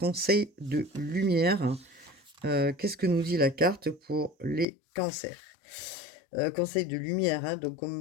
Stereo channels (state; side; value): drops out; right; at 4.7 s